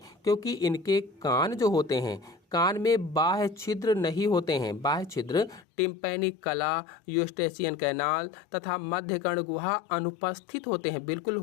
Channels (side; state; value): right; drops out; at 5.6 s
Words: क्योंकि इनके कान जो होते हैं, कान में बाह्य छिद्र नहीं होते हैं। बाह्य छिद्र टिम्पैनिक कला, यूस्टेशियन कैनाल तथा मध्य कर्ण गुहा अनुपस्थित होते हैं, बिल्कुल